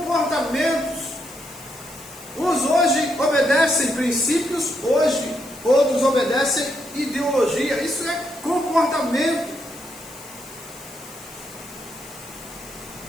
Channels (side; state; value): left; noise; hiss, 19 dB below the sound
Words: Uns hoje obedecem princípios, hoje outros obedecem ideologia. Isso é comportamento.